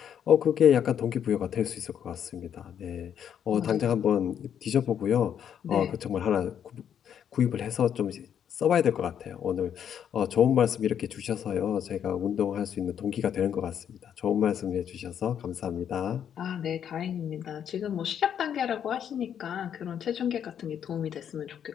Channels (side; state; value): right; quieter; 8.9 dB